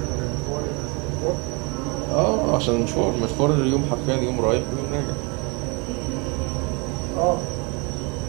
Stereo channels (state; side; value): quieter; left; 30.0 dB